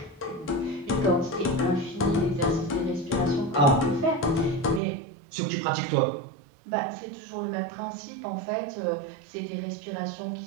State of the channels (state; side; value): drops out; left; at 4.8 s